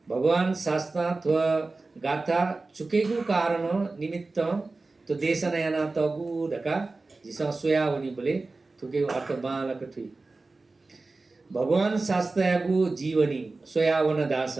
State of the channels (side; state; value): left; quieter; 3.5 dB